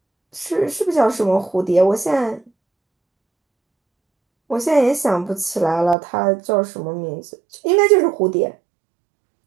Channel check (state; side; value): drops out; left; at 6.0 s